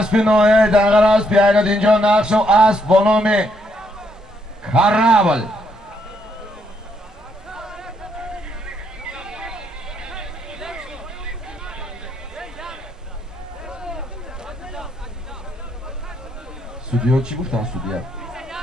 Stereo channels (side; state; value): both; normal; correlation 0.75